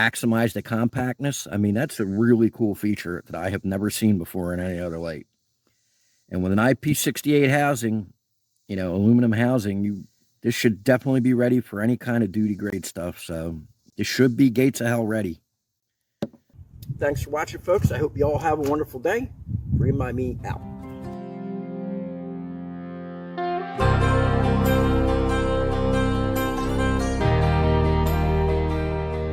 the compactness, I mean, that's a really cool feature that I have never seen before in any other light. And with an IP68 housing, you know, aluminum housing, this should definitely be ready for any kind of duty grade stuff. So this should be gates of hell ready. Thanks for watching, folks. I hope you all have a wonderful day. Remind me out.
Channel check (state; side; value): identical; both; correlation 1.00